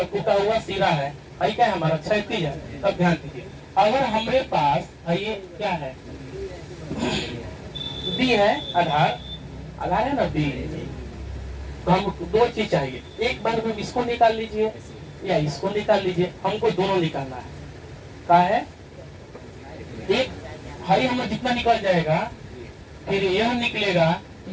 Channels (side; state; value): both; identical; correlation 1.00